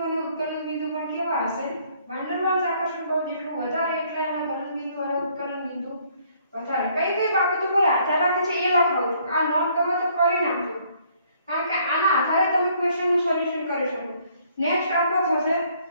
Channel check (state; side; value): inverted; both; correlation -0.64